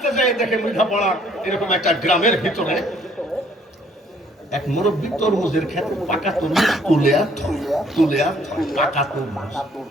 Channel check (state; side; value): normal; both; correlation 0.62